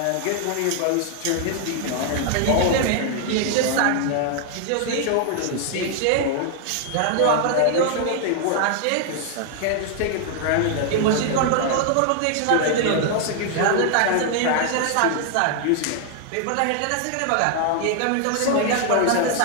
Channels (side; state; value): both; different; correlation 0.00